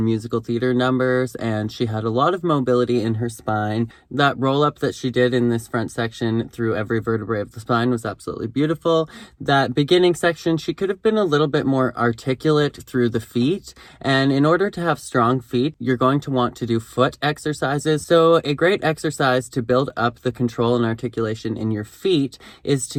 musical theater numbers, and she had a lot of mobility in her spine. That roll up that she did in this front section through every vertebrae of the spine was absolutely beautiful. That beginning section, she could have been a little bit more articulate through the feet, and in order to have strong feet, you're going to want to do foot exercises. So a great exercise to build up the control and articulation in your feet is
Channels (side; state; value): both; identical; correlation 1.00